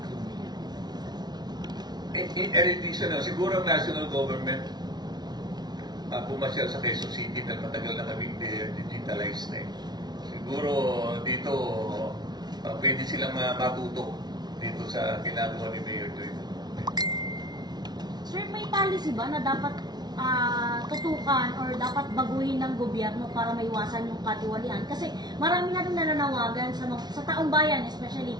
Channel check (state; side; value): late; left; 0.20 ms